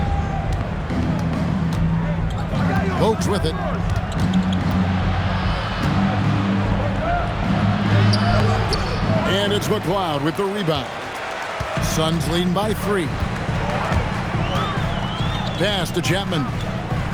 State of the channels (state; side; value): identical; both; correlation 1.00